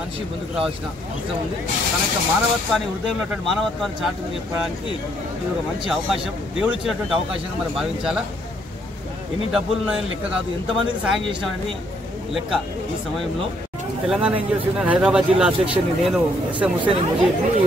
ముందుకు రావాల్సిన అవసరం ఉంది. తన యొక్క మానవత్వాన్ని, హృదయంలో ఉన్నటువంటి మానవత్వాన్ని చాటుకు చెప్పడానికి ఇది ఒక మంచి అవకాశం, దేవుడు ఇచ్చినటువంటి అవకాశంగా మనం భావించాలా. ఎన్ని డబ్బులు ఉన్నాయని లెక్క కాదు, ఎంతమందికి సాయం చేసినామనేది లెక్క. ఈ సమయంలో తెలంగాణ ఎన్జిఓస్ యూనియన్ హైదరాబాద్ జిల్లా అధ్యక్షుడిని నేను ఎస్ఎం హుస్సేన్ ముజీబ్ని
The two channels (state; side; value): normal; both; correlation 0.69